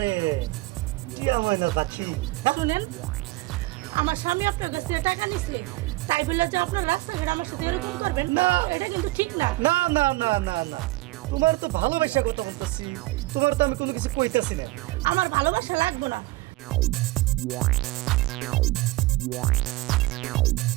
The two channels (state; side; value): quieter; left; 20.3 dB